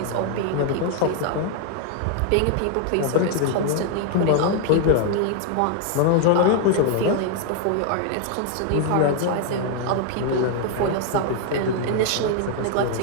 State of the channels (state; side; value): different; both; correlation 0.00